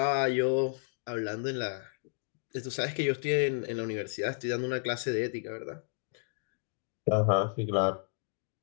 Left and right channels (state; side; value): silent; right; digital silence